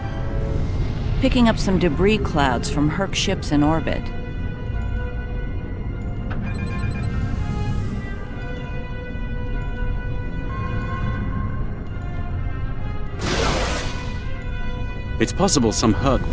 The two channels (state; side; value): identical; both; correlation 1.00